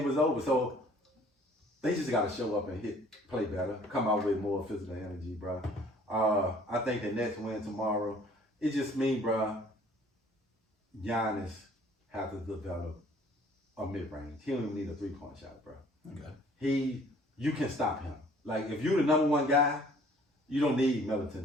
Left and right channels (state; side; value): normal; both; correlation 0.55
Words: was over. So they just got to show up and play better. Come out with more physical energy, bro. I think the Nets win tomorrow. It just means, bro, Giannis have to develop a mid-range. He don't even need a 3-point shot, bro. Okay. You can stop him. Like, if you're the number 1 guy, you don't need